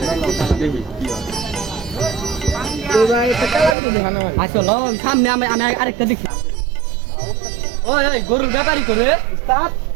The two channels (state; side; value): drops out; left; at 3.8 s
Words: জায়গায় দেখি কি হয় এবার একটা কালা গরু দেখানো হয় আচ্ছা ল সামনে আমি আমি আরেকটা দেখি ওই ওই গরুর ব্যাপারই করে